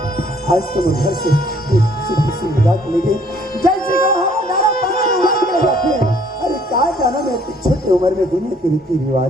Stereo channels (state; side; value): normal; both; correlation 0.61